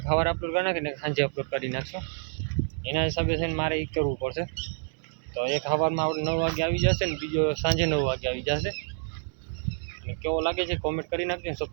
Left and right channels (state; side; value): silent; left; 59 dB below the other